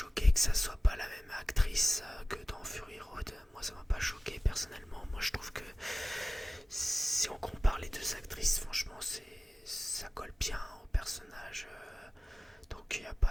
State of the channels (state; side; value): normal; both; correlation 0.96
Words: que ça soit pas la même actrice que dans Fury Road. Moi ça m'a pas choqué personnellement. Moi je trouve que si on compare les deux actrices, franchement ça colle bien au personnage. Donc il n'y a